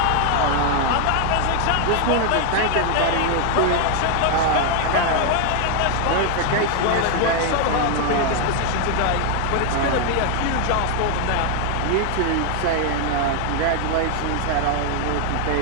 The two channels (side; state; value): both; different; correlation 0.00